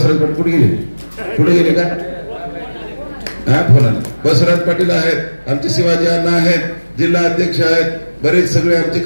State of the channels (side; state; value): both; inverted; correlation -1.00